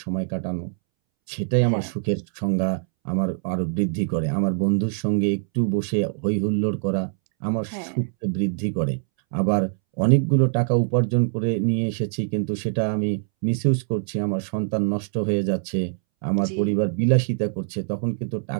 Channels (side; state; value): left; silent; 63 dB below the other